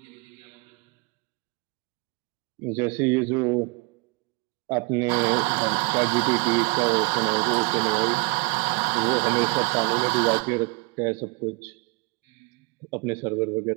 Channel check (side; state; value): left; quieter; 29.8 dB